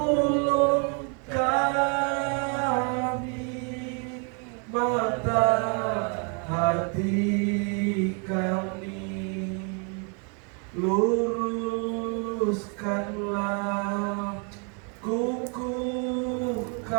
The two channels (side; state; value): left; quieter; 38.3 dB